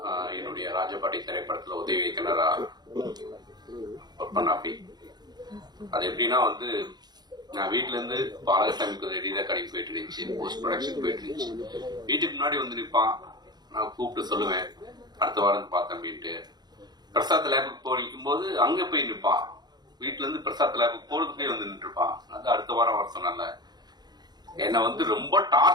என்னுடைய ராஜபாட்டி திரைப்படத்தில் உதவி இயக்குனராக ஒர்க் பண்ணாப்பி. அது எப்படின்னா வந்து நான் வீட்டுல இருந்து பாலகசாமிக்கு ரெடியாக கடைக்கு போயிட்டு இருந்துச்சு, போஸ்ட் ப்ரொடக்ஷன் போயிட்டு இருந்துச்சு. வீட்டுக்கு முன்னாடி வந்து நிற்பான், நான் கூப்பிட்டு சொல்லுவேன் அடுத்த வாரம் பார்த்தேன் அப்படின்ட்டு. பிரசாத் லேபுக்கு போகும் போது அங்க போய் நிற்பான், வீட்டுல இருந்து பிரசாத் லேபுக்கு போறதுக்கே வந்து நின்று இருப்பான். அது அடுத்த வாரம் வர சொன்னால என்னை வந்து ரொம்ப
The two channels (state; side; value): late; left; 0.20 ms